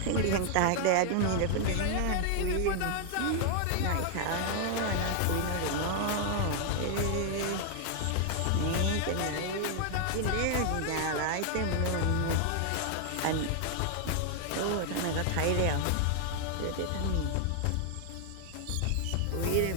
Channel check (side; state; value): both; different; correlation 0.00